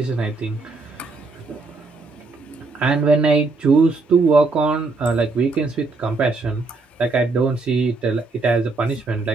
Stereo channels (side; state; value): left; quieter; 3.7 dB